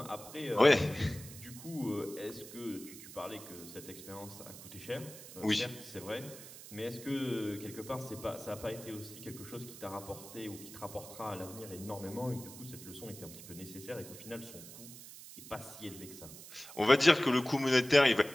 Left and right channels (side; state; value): right; noise; hiss, 14 dB below the sound